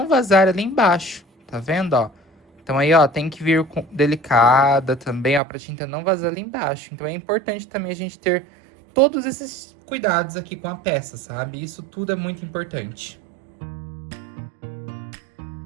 vazar ali embaixo, tá vendo, ó? Então aí, ó, tem que vir com delicada também, ó, pra tinta não vazar ali embaixo. Então é importante também a gente ter todos esses cuidados aqui com a peça, sabe? Isso tudo é muito importante.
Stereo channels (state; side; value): drops out; left; at 5.4 s